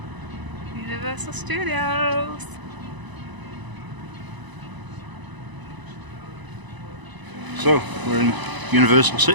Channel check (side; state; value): left; late; 1.0 ms